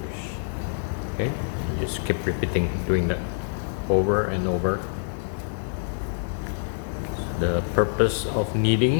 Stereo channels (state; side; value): silent; right; digital silence